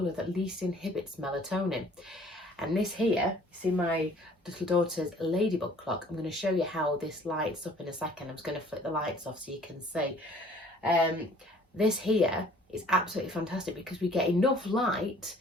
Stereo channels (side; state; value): both; normal; correlation 0.55